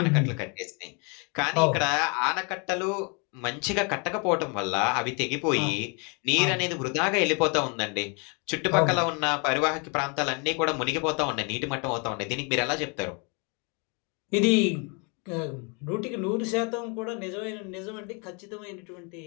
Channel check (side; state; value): right; quieter; 33.8 dB